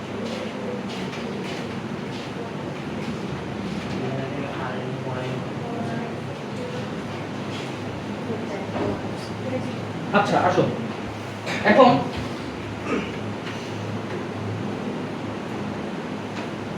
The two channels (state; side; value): identical; both; correlation 1.00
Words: আচ্ছা আসো এখন